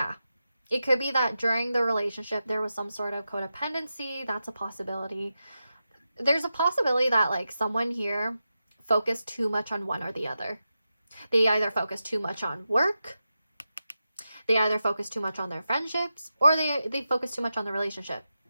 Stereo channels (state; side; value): inverted; both; correlation -0.90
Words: it could be that during the relationship there was some sort of codependency. That's a possibility. There's a possibility that like someone here focused too much on one or the other. They either focused too much on work, they either focused too much on their friendships, or they focused too much on the relationship.